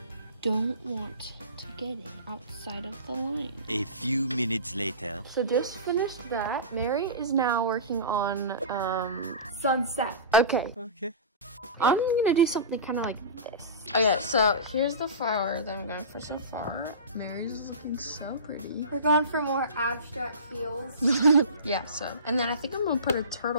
don't want to get it outside of the line. A few minutes later. So just finished that. Mary is now working on Sunset. Okay. I'm gonna do something kind of like this. Okay, so here's the flower that I'm going for so far. Mary's looking so pretty. We're going for more abstract feels. Yeah, so. And then I think I'm gonna put a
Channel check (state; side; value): inverted; both; correlation -0.31